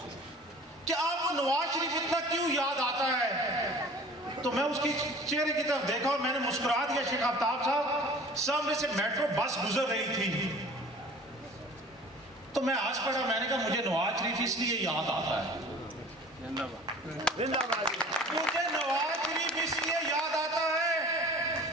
کہ آپ کو نواز شریف اتنا کیوں یاد آتا ہے؟ تو میں اس کی چہرے کی طرف دیکھا اور میں نے مسکرا دیا. شیخ آفتاب صاحب، سامنے سے میٹرو بس گزر رہی تھی تو میں آج پڑھا، میں نے کہا مجھے نواز شریف اس لیے یاد آتا ہے، مجھے نواز شریف اس لیے یاد آتا ہے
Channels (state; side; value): normal; both; correlation 0.45